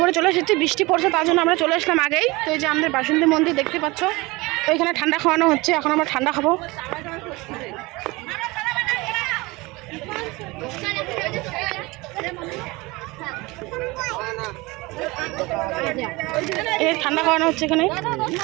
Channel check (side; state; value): left; quieter; 23.1 dB